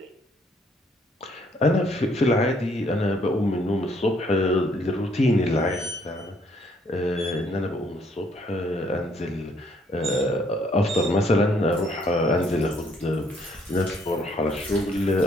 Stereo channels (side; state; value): both; normal; correlation 0.67